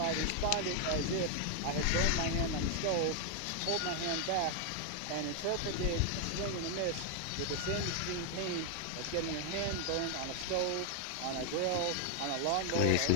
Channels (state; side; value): different; both; correlation 0.01